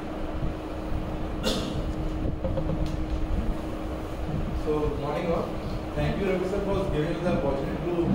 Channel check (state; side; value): identical; both; correlation 1.00